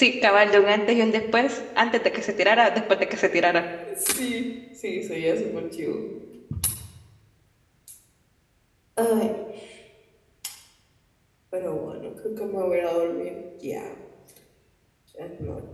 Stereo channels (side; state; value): both; identical; correlation 1.00